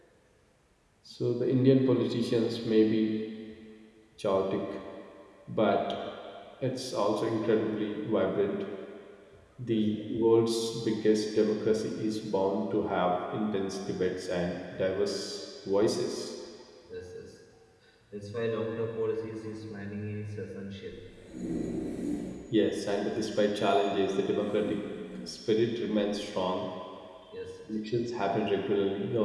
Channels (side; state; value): both; identical; correlation 1.00